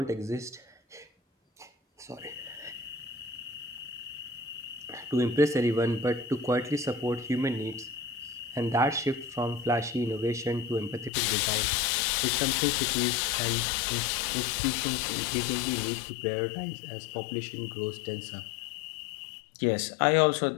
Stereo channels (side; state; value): right; drops out; at 11.1 s